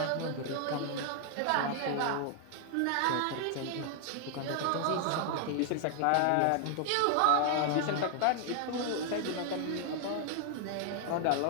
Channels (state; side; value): different; both; correlation 0.00